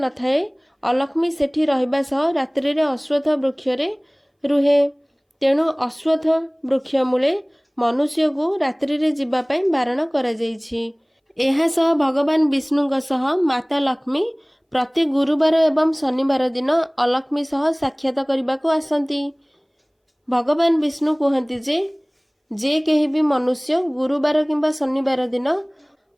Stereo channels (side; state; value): both; identical; correlation 1.00